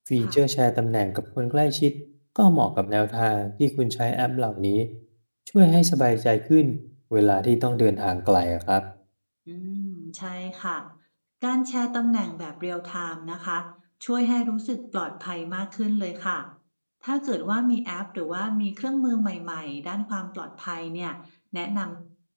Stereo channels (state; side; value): inverted; both; correlation -1.00